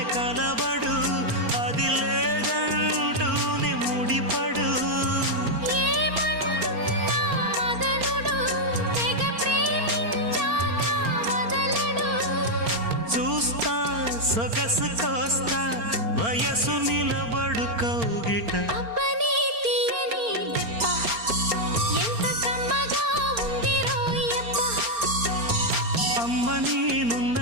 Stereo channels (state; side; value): late; left; 4.4 ms